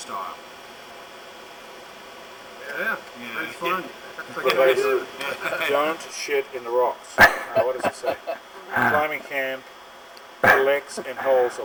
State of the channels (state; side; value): identical; both; correlation 1.00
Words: Yeah, it's fun. Don't shit in the rocks. What does it say? Climbing camp collects and holds a